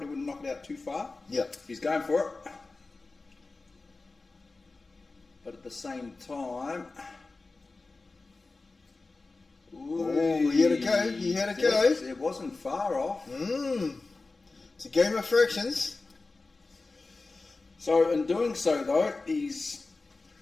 wouldn't knock it out too far. Yeah. He's going for it. But at the same time... Oh, he had a go. He had a go. It wasn't far off. It's a game of fractions. So in doing so, though, his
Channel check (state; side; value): quieter; right; 3.6 dB